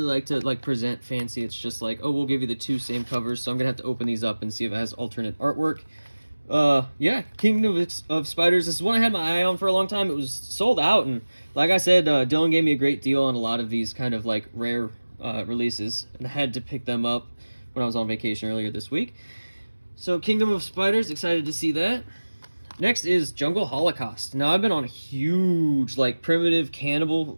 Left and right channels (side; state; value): both; inverted; correlation -1.00